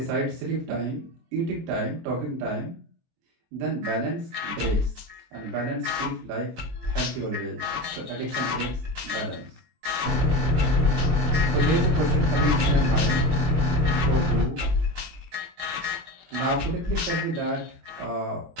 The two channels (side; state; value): left; late; 23 ms